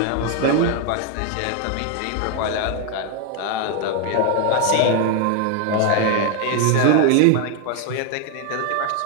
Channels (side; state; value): both; different; correlation 0.01